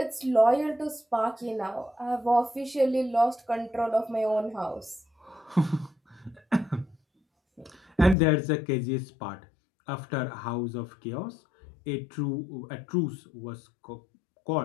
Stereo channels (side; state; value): right; drops out; at 8.2 s